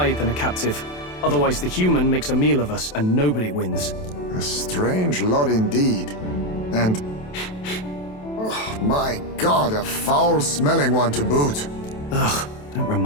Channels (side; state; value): right; late; 27 ms